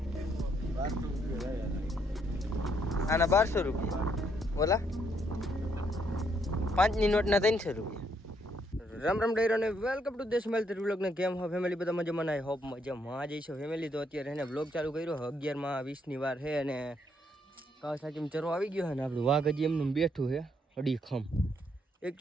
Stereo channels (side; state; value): both; normal; correlation 0.72